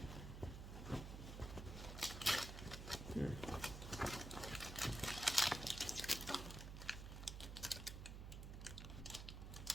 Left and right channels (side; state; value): right; noise; hum, 7 dB below the sound